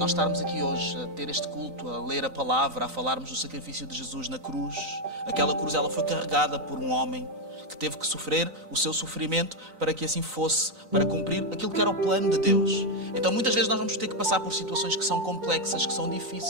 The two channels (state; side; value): late; left; 3.9 ms